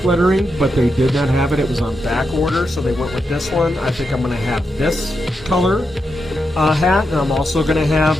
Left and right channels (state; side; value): normal; both; correlation 0.85